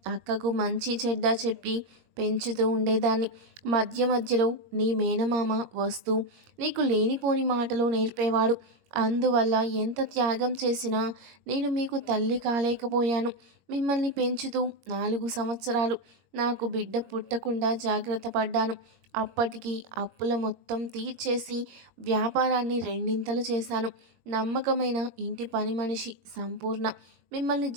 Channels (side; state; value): left; late; 21 ms